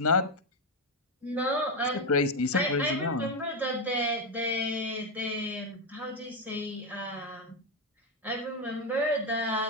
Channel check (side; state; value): both; normal; correlation 0.07